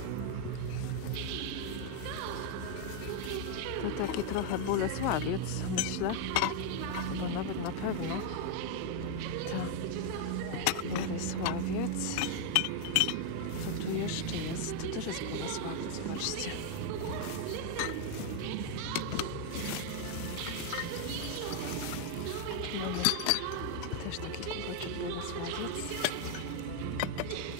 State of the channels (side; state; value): both; different; correlation 0.00